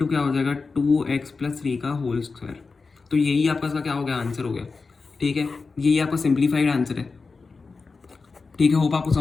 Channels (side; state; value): right; quieter; 4.3 dB